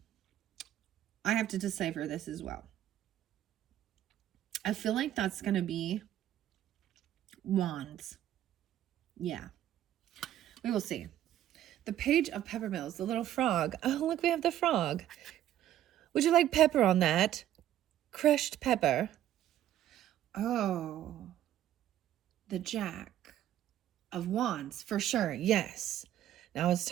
I have to decipher this as well. I feel like that's going to be wands. Yeah. We will see. The Page of Peppermills, the little frog. Oh, look, we have the frog. Would you like pepper on that? Crushed pepper. Oh, the Jack of Wands, for sure. Yes. Now I was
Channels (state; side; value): quieter; left; 12.1 dB